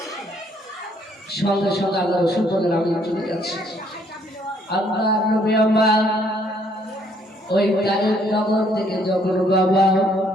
সঙ্গে সঙ্গে আল্লাহ রাসূল বললেন, আমি চলে যাচ্ছি। আল্লাহর নবী আমার ওই তায়েফ নগর থেকে যখন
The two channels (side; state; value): both; normal; correlation 0.66